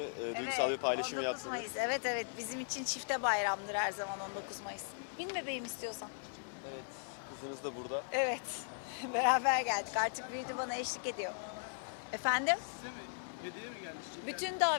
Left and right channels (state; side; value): silent; right; 52 dB below the other